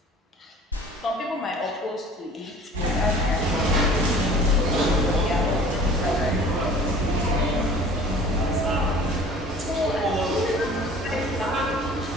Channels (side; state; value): both; normal; correlation 0.46